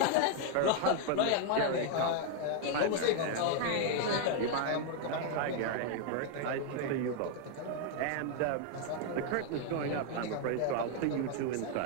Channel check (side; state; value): both; different; correlation 0.00